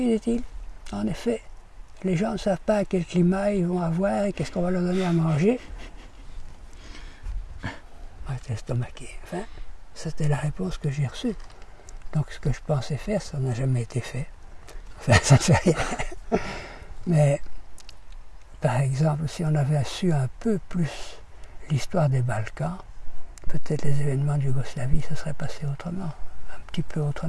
dit-il, en effet, les gens ne savent pas quel climat ils vont avoir et qu'est-ce qu'on va leur donner à manger. J'étais estomaqué. Enfin, c'était la réponse que j'ai reçue. Donc ce que je pensais faire, ça n'a jamais été fait. Enfin, ça ne fait rien. Mais, par exemple, si on avait su un peu plus l'histoire des Balkans, peut-être les événements de Yougoslavie se seraient passés autrement. Un petit peu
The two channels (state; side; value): identical; both; correlation 1.00